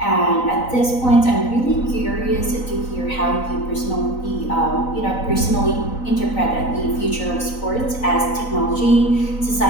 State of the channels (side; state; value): right; late; 3.9 ms